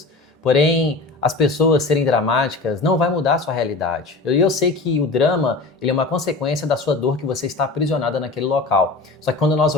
Porém, as pessoas serem dramáticas não vai mudar a sua realidade. Eu sei que o drama ele é uma consequência da sua dor que você está aprisionada naquele local. Só que quando nós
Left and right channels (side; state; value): right; quieter; 3.5 dB